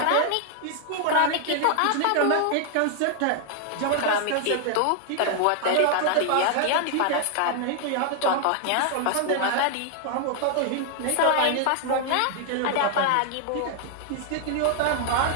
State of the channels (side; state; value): both; different; correlation 0.00